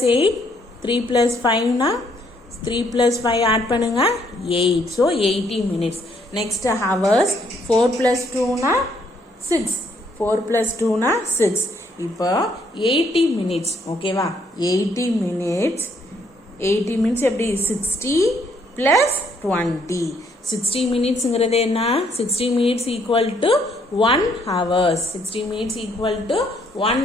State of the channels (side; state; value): both; normal; correlation 0.69